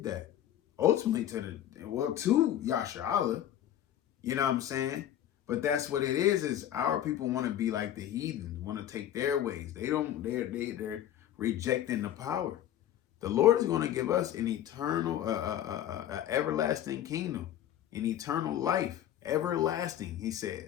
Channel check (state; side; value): quieter; right; 11.5 dB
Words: that. Ultimately to Yahshua. You know what I'm saying? But that's what it is our people want to be like the heathens, want to take their ways. They're rejecting the power. The Lord is going to give us an eternal, everlasting kingdom, an eternal life, everlasting. He said,